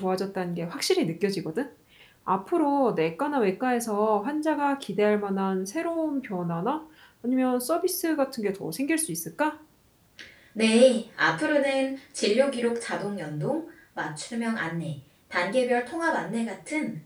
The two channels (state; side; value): identical; both; correlation 1.00